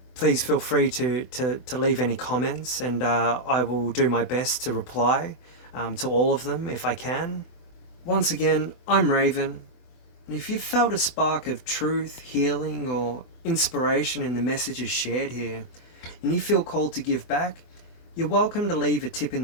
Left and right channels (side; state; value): right; late; 24 ms